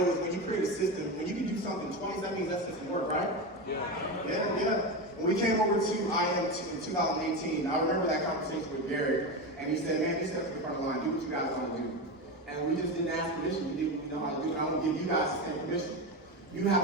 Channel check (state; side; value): normal; both; correlation 0.18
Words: is when you create a system, when you can do something twice, that means that system worked, right? Yeah. When we came over to IM in 2018, I remember that conversation with Gary, and he said, man, you step to the front of the line, do what you guys want to do. And we just didn't ask permission, we didn't know how to do it. I want to give you guys the same permission. You